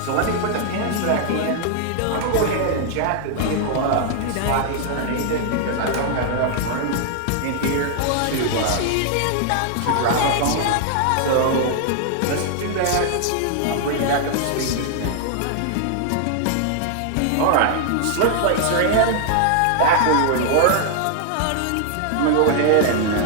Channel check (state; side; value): different; both; correlation -0.01